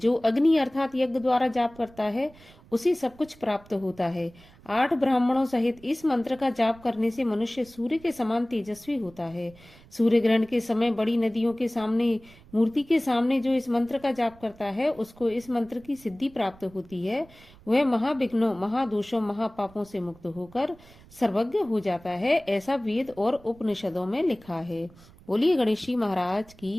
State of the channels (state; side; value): noise; right; rumble, 24 dB below the sound